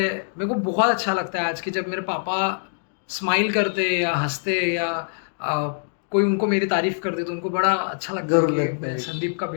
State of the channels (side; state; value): right; silent; digital silence